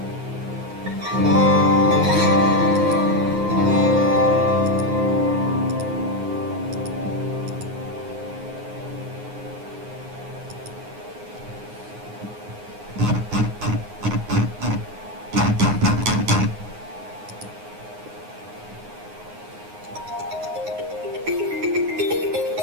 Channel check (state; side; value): late; left; 9.6 ms